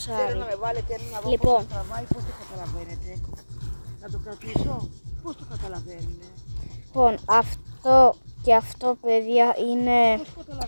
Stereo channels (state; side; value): inverted; both; correlation -1.00